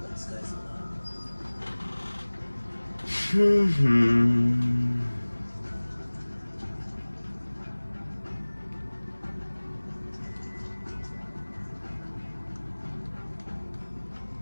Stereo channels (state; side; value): inverted; both; correlation -1.00